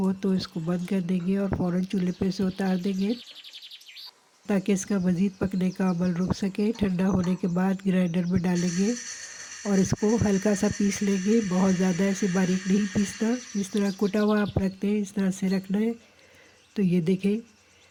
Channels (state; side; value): identical; both; correlation 1.00